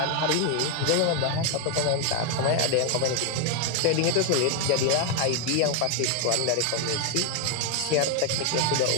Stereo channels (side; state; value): both; different; correlation 0.01